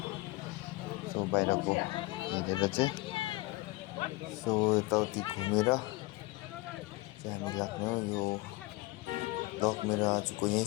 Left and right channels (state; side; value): quieter; right; 21.6 dB